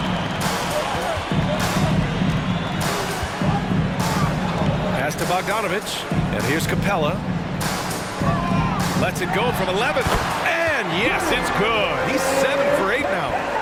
Pass to Bogdanovich. And here's Capella. Lets it go from 11. And yes, it's good. He's 7 for 8 now.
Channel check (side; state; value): both; identical; correlation 1.00